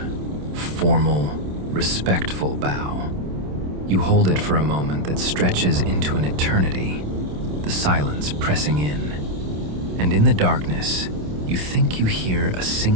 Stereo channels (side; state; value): left; late; 27 ms